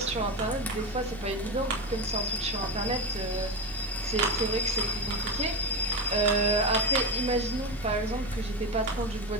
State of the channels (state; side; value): normal; both; correlation 0.18